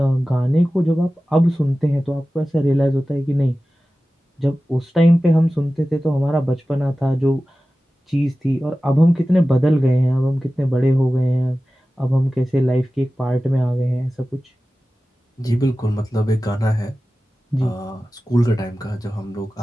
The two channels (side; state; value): both; normal; correlation 0.95